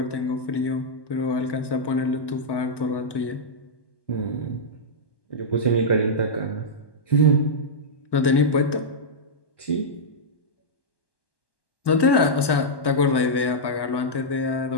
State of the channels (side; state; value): right; late; 1.1 ms